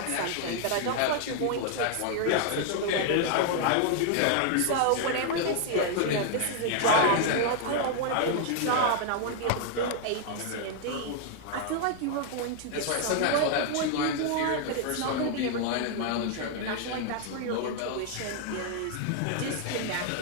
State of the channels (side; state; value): both; different; correlation 0.00